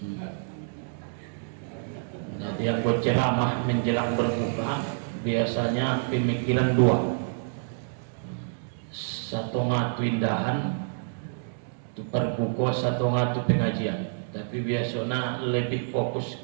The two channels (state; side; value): silent; left; digital silence